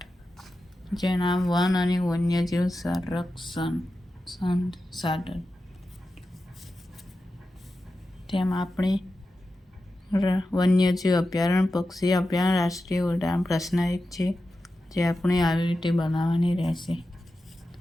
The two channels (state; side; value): normal; both; correlation 0.92